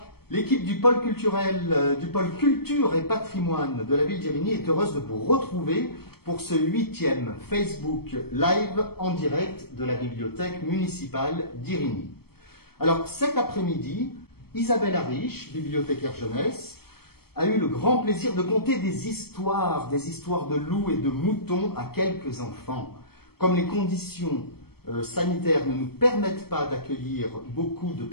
L'équipe du pôle culturel, du pôle culture et patrimoine de la ville d'Irigny est heureuse de vous retrouver pour ce 8e Facebook Live en direct de la bibliothèque municipale d'Irigny. Alors, cet après-midi, Isabelle Ariche, bibliothécaire jeunesse, a eu le grand plaisir de conter des histoires de loups et de moutons à quelques enfants. Comme les conditions sanitaires ne nous permettent pas d'accueillir beaucoup de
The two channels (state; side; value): late; right; 0.95 ms